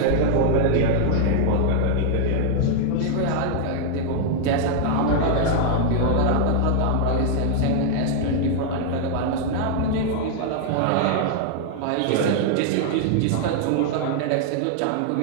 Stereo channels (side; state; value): both; different; correlation -0.01